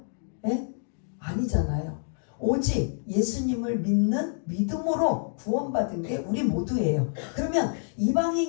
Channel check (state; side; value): silent; right; digital silence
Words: 예? 아니잖아요. 오직 예수님을 믿는 믿음으로 구원받은 게 우리 모두예요. 그러면